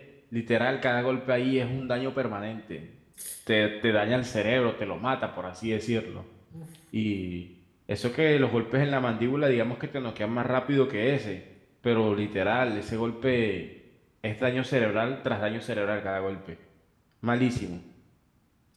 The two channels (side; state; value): both; identical; correlation 1.00